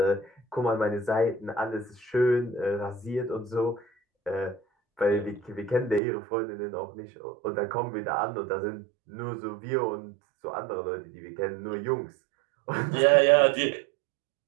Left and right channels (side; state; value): left; drops out; at 6.0 s